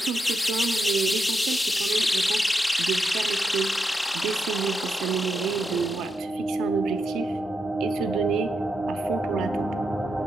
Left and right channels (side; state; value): both; normal; correlation 0.84